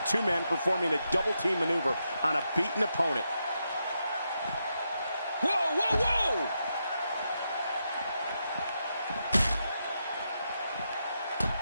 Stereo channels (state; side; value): inverted; both; correlation -0.84